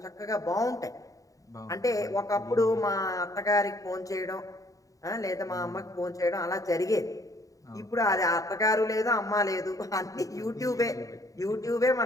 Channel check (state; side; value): late; right; 0.16 ms